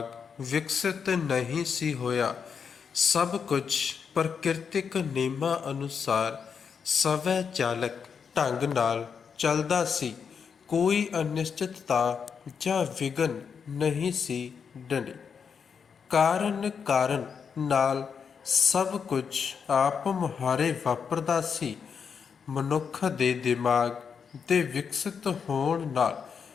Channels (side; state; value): right; quieter; 6.5 dB